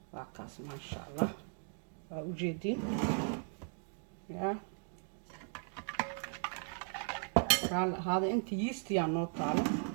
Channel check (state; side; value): silent; left; 53 dB below the other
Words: واكاس ما شاء الله وجدين يا قال هذا انت يست يا نو طالع